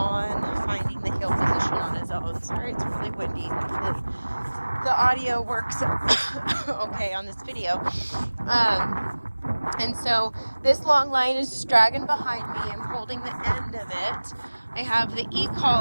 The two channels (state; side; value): inverted; both; correlation -1.00